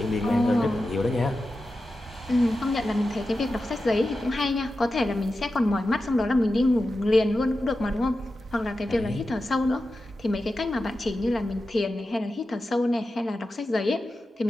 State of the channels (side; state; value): both; normal; correlation 0.92